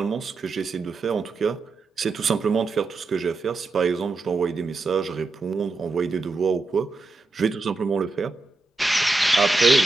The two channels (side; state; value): left; quieter; 3.6 dB